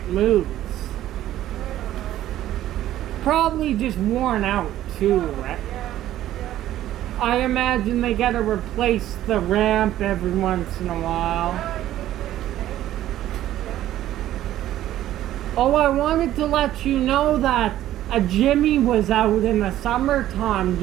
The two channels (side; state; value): left; quieter; 13.2 dB